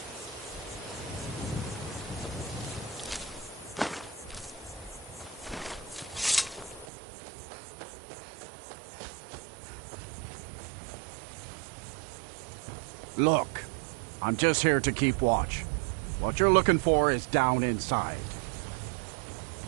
Look, I'm just here to keep watch. What you're looking for is down inside.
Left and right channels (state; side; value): drops out; left; at 6.9 s